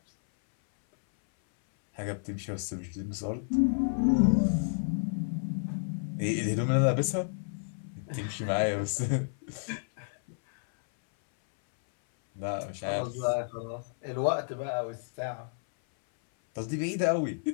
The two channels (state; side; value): silent; right; 57 dB below the other